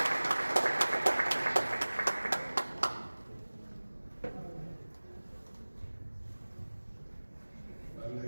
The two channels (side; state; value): both; inverted; correlation -1.00